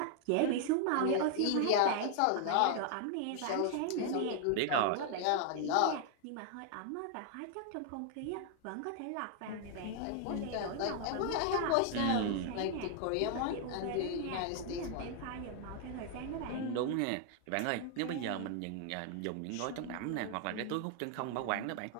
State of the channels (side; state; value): both; different; correlation 0.00